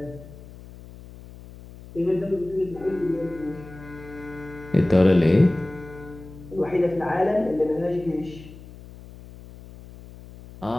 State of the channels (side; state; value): left; noise; hum, 18 dB below the sound